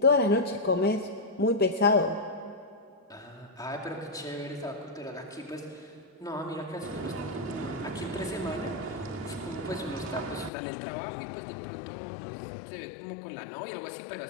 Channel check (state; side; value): drops out; right; at 10.5 s